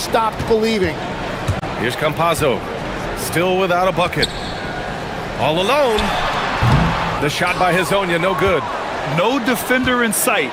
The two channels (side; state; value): both; identical; correlation 1.00